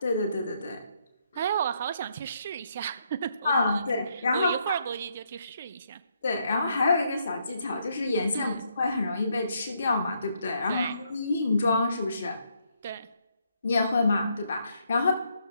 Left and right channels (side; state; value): both; inverted; correlation -0.74